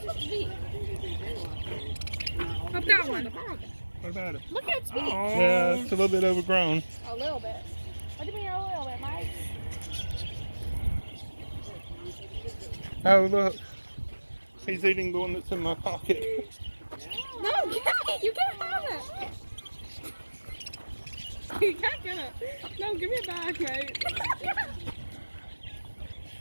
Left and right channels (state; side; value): inverted; both; correlation -1.00